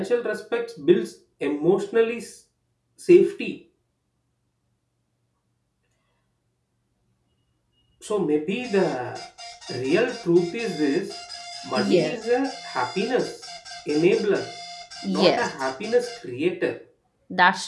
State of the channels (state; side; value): identical; both; correlation 1.00